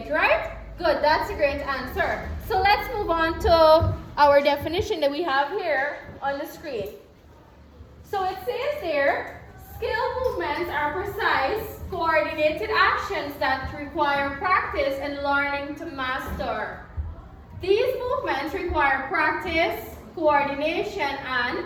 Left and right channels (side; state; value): both; identical; correlation 1.00